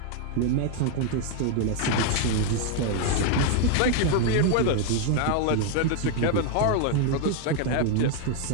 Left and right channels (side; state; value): both; different; correlation 0.01